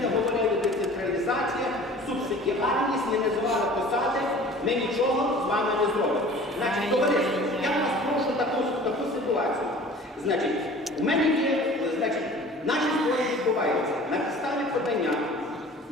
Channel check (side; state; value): both; normal; correlation 0.45